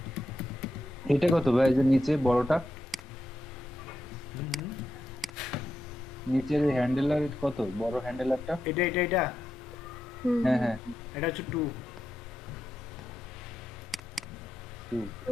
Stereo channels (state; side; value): normal; both; correlation 0.86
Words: এটা কত ভাই, এই যে নিচে বড়টা, নিচের হ্যান্ডেলার কত, বড় হ্যান্ডেলারটা? এটা হুম, হ্যাঁ হ্যাঁ এটা হচ্ছে 2। 2